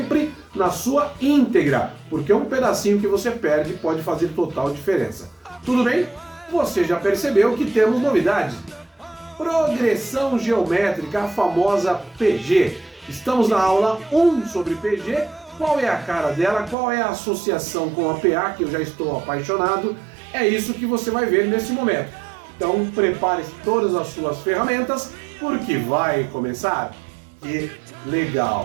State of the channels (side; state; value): left; drops out; at 16.8 s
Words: na sua íntegra, porque um pedacinho que você perde pode fazer total diferença. Tudo bem? Você já percebeu que temos novidades. Progressão geométrica, a famosa PG. Estamos na aula 1 sobre PG. Qual é a cara dela? Qual é a associação com a PA, que eu já estou apaixonado? É isso que você vai ver nesse momento. Então prepare todas as suas ferramentas, porque vai começar. Que